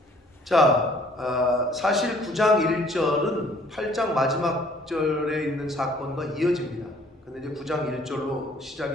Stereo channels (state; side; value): normal; both; correlation 0.59